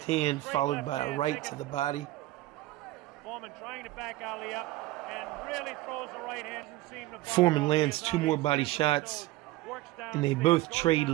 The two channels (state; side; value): quieter; left; 17.4 dB